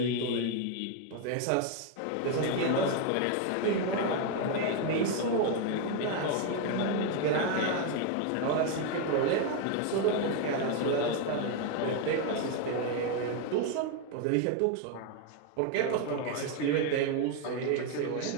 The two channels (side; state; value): both; different; correlation 0.01